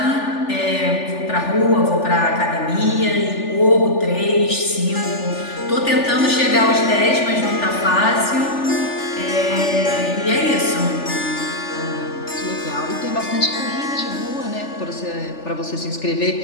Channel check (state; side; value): late; right; 3.4 ms